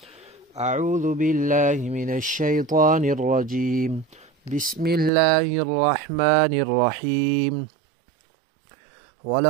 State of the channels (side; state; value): left; drops out; at 5.1 s